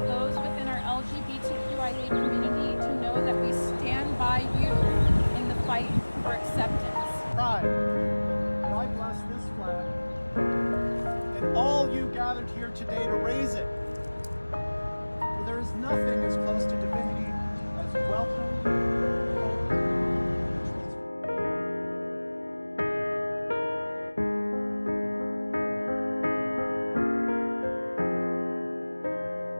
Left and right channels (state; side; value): inverted; both; correlation -1.00